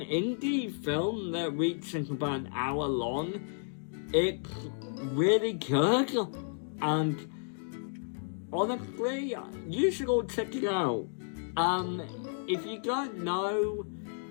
film that reaches about an hour long, it's really good, and honestly, you should all check it out. If you don't know,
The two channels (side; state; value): right; silent; digital silence